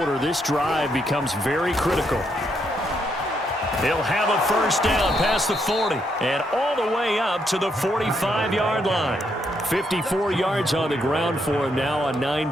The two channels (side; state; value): both; normal; correlation 0.76